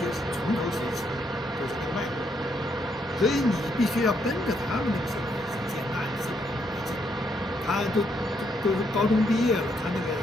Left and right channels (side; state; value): both; normal; correlation 0.75